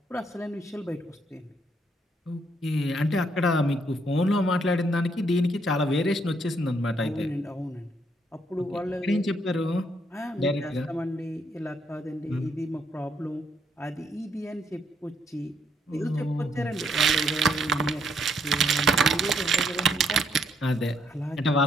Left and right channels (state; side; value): normal; both; correlation 0.72